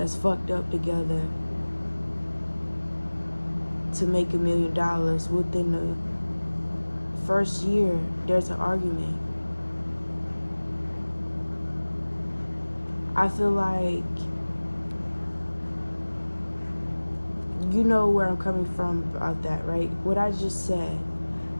fucked up together to make $1 million within the first year. There's an argument. I feel like, you know where I'm coming from about that, right? What I just said.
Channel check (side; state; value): both; inverted; correlation -1.00